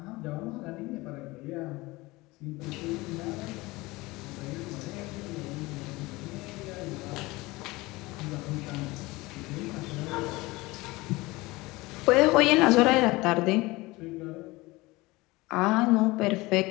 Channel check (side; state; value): right; quieter; 21.5 dB